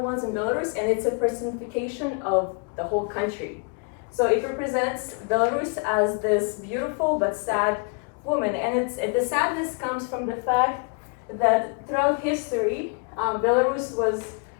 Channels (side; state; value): right; quieter; 36.7 dB